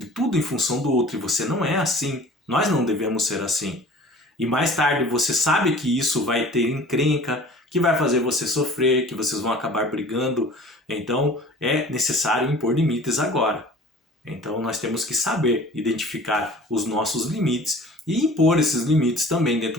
em função do outro e você não é assim, nós não devemos ser assim. E mais tarde você sabe que isso vai ter encrenca, que vai fazer você sofrer, que vocês vão acabar brigando. Então é necessário impor limites agora. Então nós temos que saber identificar os nossos limites e impor esses limites também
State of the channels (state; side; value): normal; both; correlation 0.45